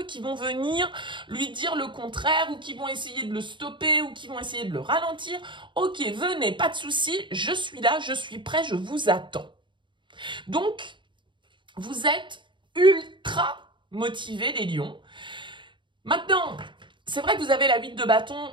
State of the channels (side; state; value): left; late; 0.23 ms